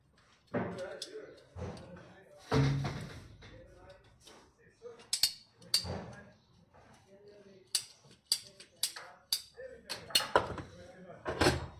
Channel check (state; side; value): identical; both; correlation 1.00